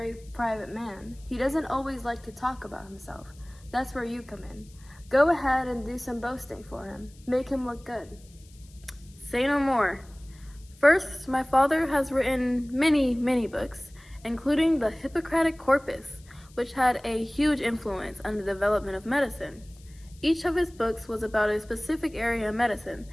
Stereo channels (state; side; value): noise; left; hiss, 27 dB below the sound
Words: private man, he doesn't always like to talk about himself. That's where you come in. Go ahead and do some boasting for him. Make him look good. Say no more. First, my father has written many, many books, including the Hippocratic Corpus, which had a huge influence on the development of medicine. Each of his books was about a specific area of medicine,